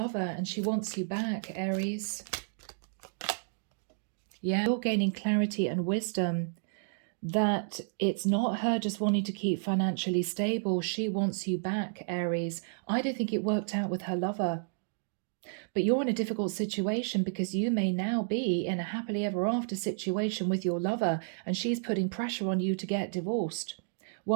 and she wants you back, Aries. Yeah, you're gaining clarity and wisdom that it's not her just wanting to keep financially stable. She wants you back, Aries. I don't think it worked out with her lover. But you're in a difficult situation because you may now be in a happily ever after situation with your lover and she's putting pressure on you to get divorced.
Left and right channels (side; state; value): left; silent; digital silence